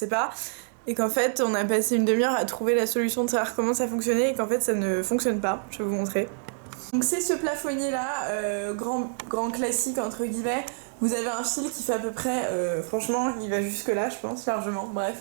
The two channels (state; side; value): silent; left; digital silence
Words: pas. Et qu'en fait, on a passé une demi-heure à trouver la solution de savoir comment ça fonctionnait et qu'en fait, ça ne fonctionne pas. Je vais vous montrer. Donc c'est ce plafonnier là, grand classique entre guillemets. Vous avez un fil qui fait à peu près, franchement, il va jusque là, je pense, largement. Bref.